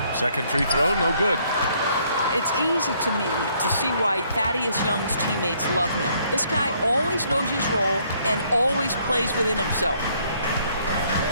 Second free throw, no good. It's easy to me to see why Thaddeus Young's teammates love him. This guy always knows his role and always plays within himself.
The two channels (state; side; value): inverted; both; correlation -0.66